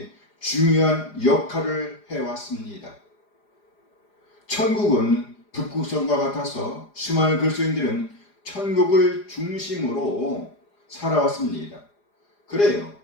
중요한 역할을 해왔습니다. 천국은 북극성과 같아서 수많은 그리스도인들은 천국을 중심으로 살아왔습니다. 그래요.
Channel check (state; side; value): late; right; 4.9 ms